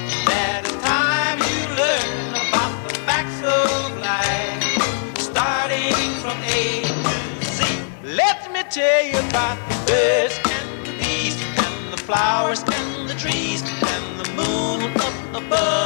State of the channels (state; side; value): silent; right; digital silence